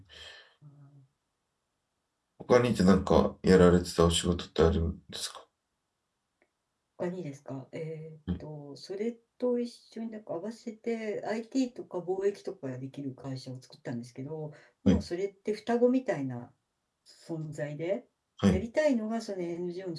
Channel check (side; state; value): both; identical; correlation 1.00